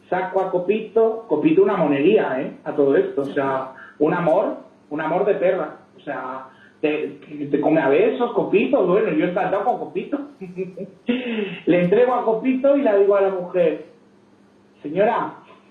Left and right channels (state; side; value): identical; both; correlation 1.00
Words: saco a Copito una monería, a todo esto. O sea, un amor de perra. O sea, te come a besos, Copito. Bueno, yo he encantado con Copito. Le entrego a Copito y le digo a la mujer, señora,